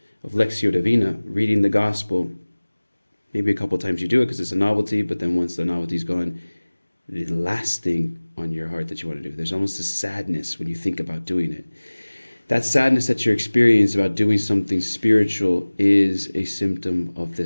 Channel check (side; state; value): both; inverted; correlation -1.00